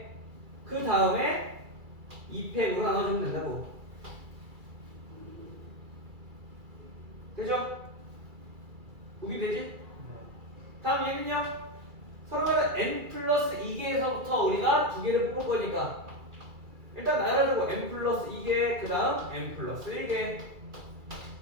그 다음에 2팩으로 나눠주면 된다고. 되죠? 우기 되지? 다음 얘는요. 서로가 n 플러스 2개에서부터 우리가 두 개를 뽑을 거니까 일단 나열하자고. n 플러스 2개 그 다음 n 플러스 1개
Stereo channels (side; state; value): left; late; 2.3 ms